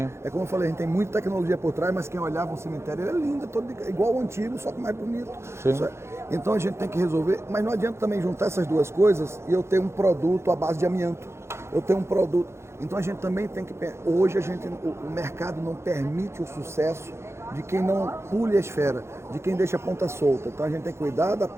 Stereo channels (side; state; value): left; late; 0.13 ms